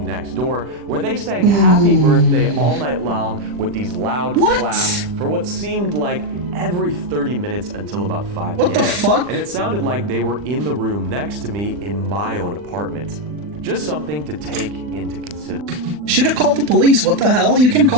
next door, where they sang happy birthday all night long with these loud claps for what seemed like every 30 minutes until about 5 p.m. What the fuck? And it sounded like they were in the room next to me in my own apartment. Just something to take into consideration. Should have called the police. What the hell? You can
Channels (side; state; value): left; late; 40 ms